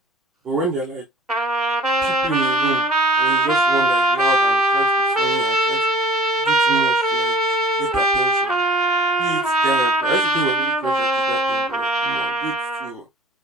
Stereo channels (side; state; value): both; normal; correlation 0.48